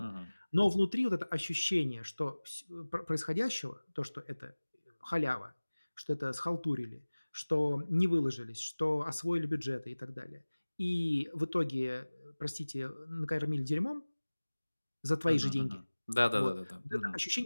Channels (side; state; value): both; inverted; correlation -1.00